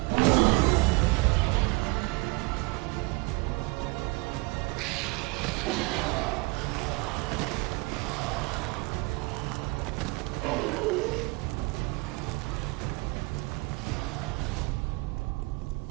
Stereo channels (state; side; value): quieter; left; 25.9 dB